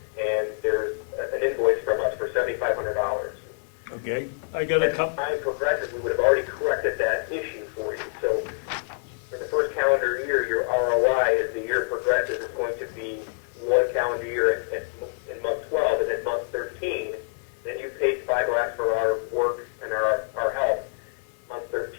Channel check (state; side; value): silent; right; 61 dB below the other